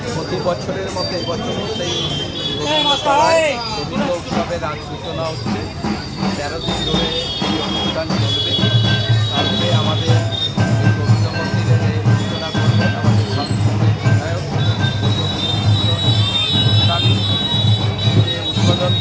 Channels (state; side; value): identical; both; correlation 1.00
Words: প্রতি বছরের মতো এবছরও সেই রবীন্দ্র উৎসবের আজ সূচনা হচ্ছে। 13 দিন ধরে এই অনুষ্ঠান চলবে। তারপরে আমাদের রবীন্দ্র মন্দিরের সূচনা করবেন আমাদের শান্তিপুরের বিধায়ক অনুষ্ঠান উদ্বোধন